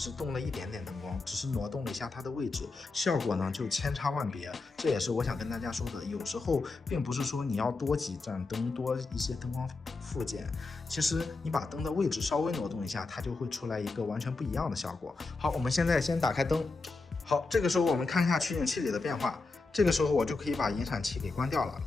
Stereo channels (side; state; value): right; quieter; 3.7 dB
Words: 动了一点点灯光，只是挪动了一下它的位置，效果呢就千差万别。这也是我想跟大家说的，有时候并不是说你要多几盏灯，多一些灯光附件，其实你把灯的位置稍微挪动一下，它就会出来一个完全不一样的效果。好，我们现在先打开灯。好，这个时候我们看一下取景器里的变化。这个时候我就可以把引闪器给关掉了，